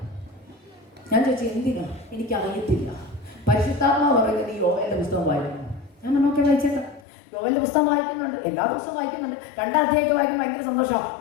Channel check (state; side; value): drops out; right; at 7.1 s